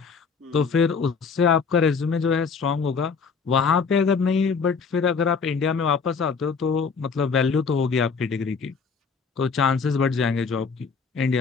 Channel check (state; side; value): quieter; right; 5.4 dB